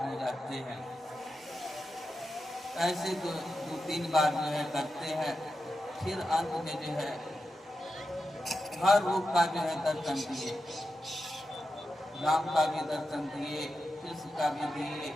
हो जाते हैं। ऐसे तो 2-3 बार जो है करते हैं। फिर अंत में जो है हर रूप का जो है दर्शन दिए, राम का भी दर्शन दिए, कृष्ण का भी दिए,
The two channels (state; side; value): normal; both; correlation 0.90